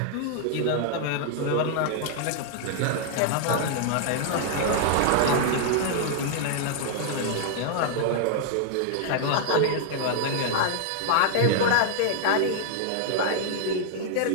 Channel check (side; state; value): both; different; correlation -0.01